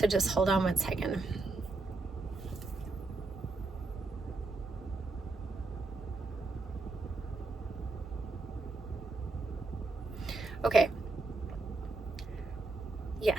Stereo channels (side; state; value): left; quieter; 3.4 dB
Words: just hold on one second. Okay.